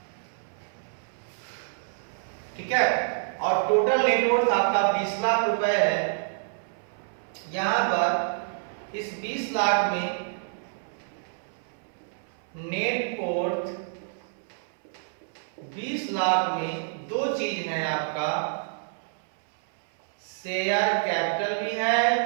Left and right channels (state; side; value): silent; left; 60 dB below the other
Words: ठीक है, और टोटल नेटवर्थ आपका 20 लाख रुपए है। यहां पर इस 20 लाख में नेटवर्थ 20 लाख में दो चीज है आपका, शेयर कैपिटल भी है,